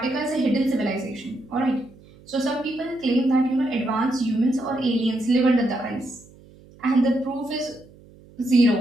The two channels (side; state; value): right; noise; hum, 24 dB below the sound